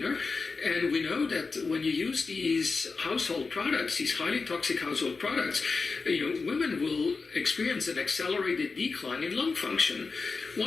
And we know that when you use these household products, these highly toxic household products, women will experience an accelerated decline in lung function.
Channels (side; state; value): right; quieter; 4.4 dB